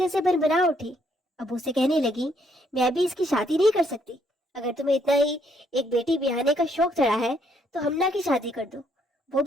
से भरभरा उठी। अब्बू से कहने लगी, मैं भी इसकी शादी नहीं कर सकती, अगर तुम्हें इतना ही एक बेटी ब्याहने का शौक चढ़ा है तो हमना की शादी कर दो, वो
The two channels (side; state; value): both; normal; correlation 0.71